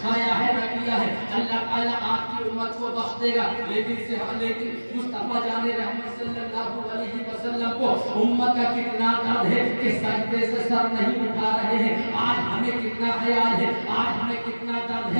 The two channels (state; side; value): inverted; both; correlation -1.00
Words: کھایا ہے نہ کیا ہے، اللہ تعالیٰ آپ کی امت کو بخش دے گا. لیکن مصطفیٰ جان رحمت صلی اللہ علیہ وسلم کو امت کا کتنا درد ہے کہ سجدے سے سر نہیں اٹھا رہے ہیں. آج ہمیں کتنا خیال ہے، آج ہمیں کتنا درد